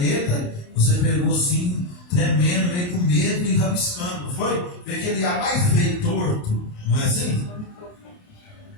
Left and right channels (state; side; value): late; right; 28 ms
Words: você pegou assim, tremendo, meio com medo e rabiscando, não foi? Fez aquele ar mais feio, torto, não é assim?